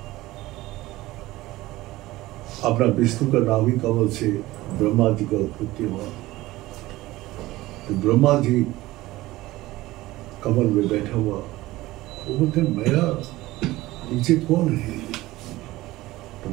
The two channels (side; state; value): left; quieter; 17.9 dB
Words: अपना विष्णु का नाभि कमल से ब्रह्मा जी का उत्पत्ति हुआ। तो ब्रह्मा जी कमल में बैठा हुआ, वो बोलते मेरा नीचे कौन है? तो